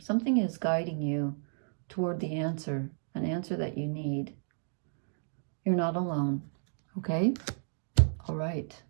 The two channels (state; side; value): silent; left; digital silence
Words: is guiding you toward the answer, an answer that you need. You're not alone. Okay? All right.